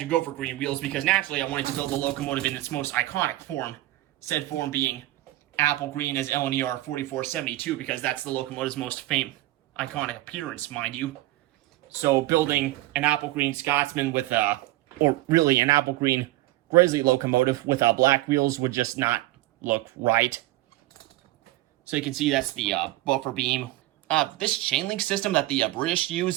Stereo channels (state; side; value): quieter; left; 17.3 dB